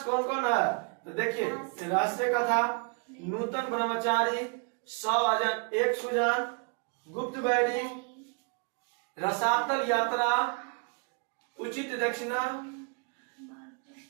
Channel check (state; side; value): quieter; left; 36.8 dB